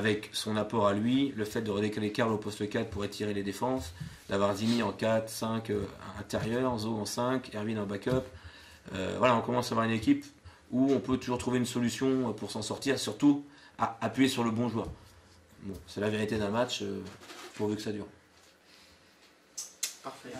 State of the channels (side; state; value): both; identical; correlation 1.00